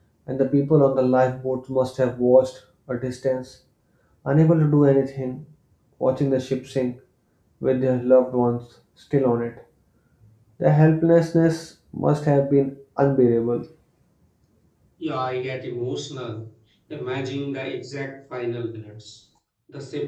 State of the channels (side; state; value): both; identical; correlation 1.00